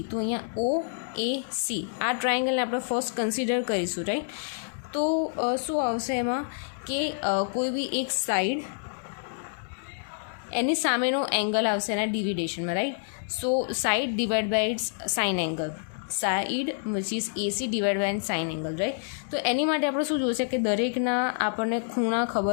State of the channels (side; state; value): right; silent; digital silence